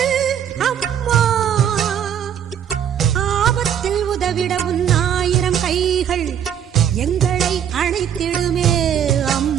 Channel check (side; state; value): left; quieter; 9.1 dB